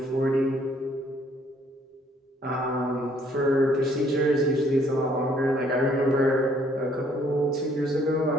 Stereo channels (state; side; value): normal; both; correlation 0.64